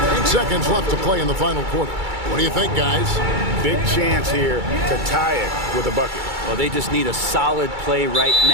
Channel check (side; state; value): left; late; 2.3 ms